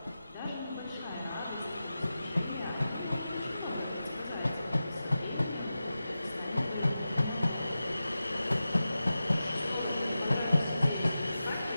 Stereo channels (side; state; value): both; inverted; correlation -0.93